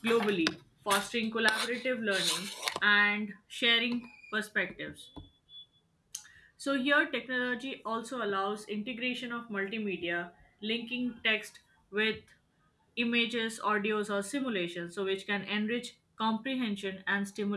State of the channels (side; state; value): both; identical; correlation 1.00